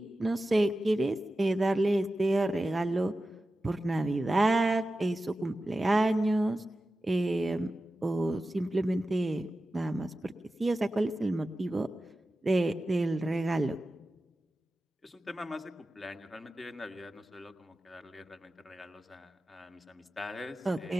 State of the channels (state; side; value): normal; both; correlation 0.93